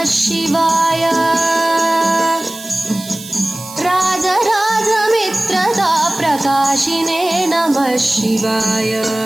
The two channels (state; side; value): noise; right; hiss, 15 dB below the sound